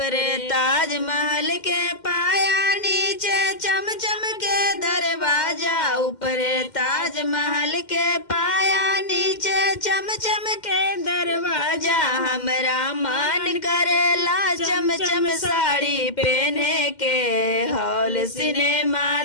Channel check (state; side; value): late; right; 2.1 ms